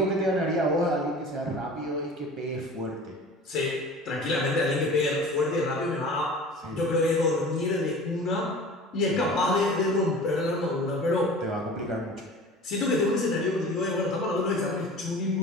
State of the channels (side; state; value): both; normal; correlation 0.40